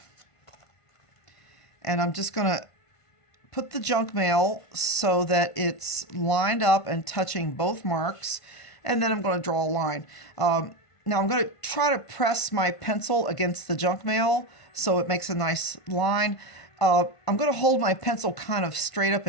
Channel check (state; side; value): late; right; 1.5 ms